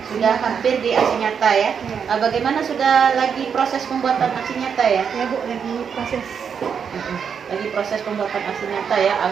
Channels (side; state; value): left; quieter; 7.0 dB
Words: sudah hampir di aksi nyata ya. Bagaimana sudah lagi proses pembuatan aksi nyata ya? Ya Bu, lagi proses. Lagi proses pembuatan aksi nyata ya.